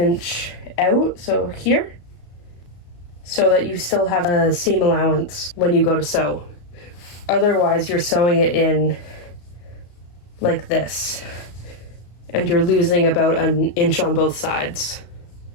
out, so here, so that you still have a seam allowance when you go to sew. Otherwise, you're sewing it in like this, and you're losing about 1 inch on both sides.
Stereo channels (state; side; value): late; right; 34 ms